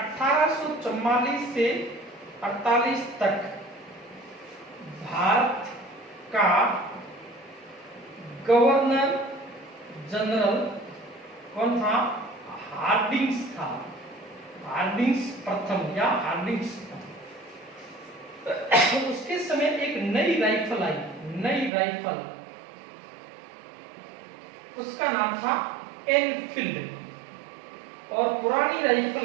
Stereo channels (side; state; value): left; drops out; at 21.7 s